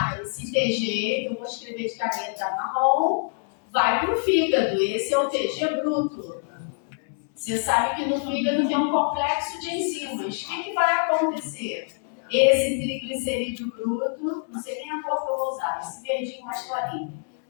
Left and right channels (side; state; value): right; silent; 61 dB below the other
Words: Esse TG, que eu vou escrever de caneta marrom, vai para o fígado. Esse é o TG bruto. Você sabe que no fígado tem um complexo de enzimas. O que vai acontecer? Esse triglicerídeo bruto, não sei nem a cor que eu vou usar, esse verdinho mais clarinho,